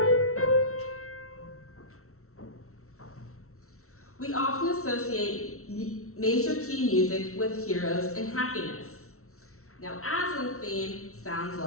We often associate major key music with heroes and happiness. Now, Aslan's theme sounds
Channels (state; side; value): late; right; 0.63 ms